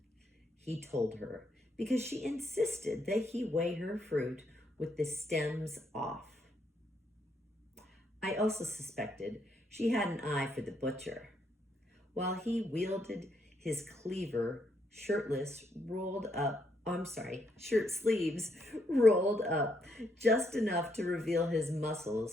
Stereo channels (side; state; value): both; normal; correlation 0.75